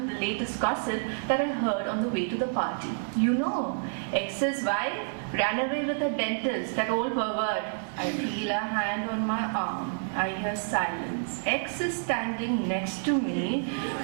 the latest gossip that I heard on the way to the party. You know, X's wife ran away with a dentist, that old pervert. I feel a hand on my arm. I hear silence. X is standing next to me,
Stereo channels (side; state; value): left; silent; 59 dB below the other